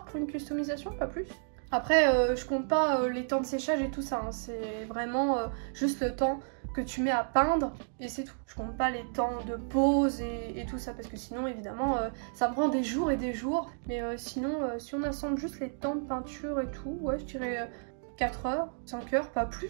pour une customisation, pas plus. Après, je compte pas les temps de séchage et tout ça, hein. C'est vraiment juste le temps que tu mets à peindre et c'est tout. Je compte pas les temps de pause et tout ça parce que sinon évidemment ça me prend des jours et des jours. Mais sinon si on assemble juste les temps de peinture et tout, ouais je dirais 4 heures, 5 heures, pas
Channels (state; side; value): silent; left; digital silence